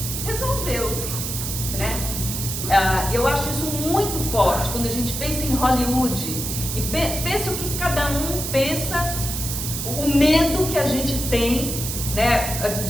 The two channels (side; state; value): right; noise; hiss, 4 dB below the sound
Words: resolveu, né? Eu acho isso muito forte quando a gente pensa em Hollywood e pensa o que cada um pensa, o medo que a gente tem, né?